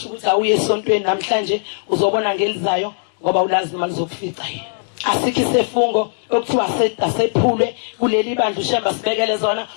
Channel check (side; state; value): right; silent; 67 dB below the other